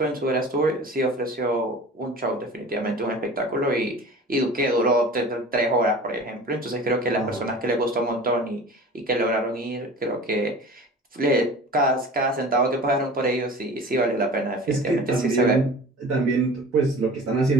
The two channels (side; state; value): both; normal; correlation 0.40